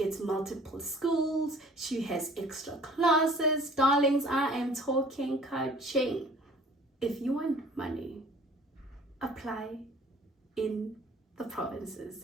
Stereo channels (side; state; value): both; normal; correlation 0.51